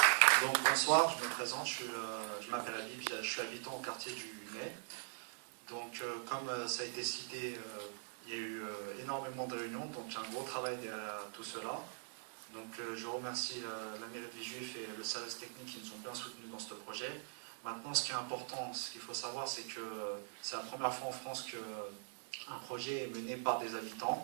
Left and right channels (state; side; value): silent; left; digital silence